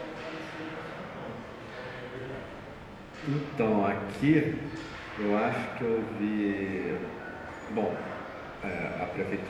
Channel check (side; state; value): both; identical; correlation 1.00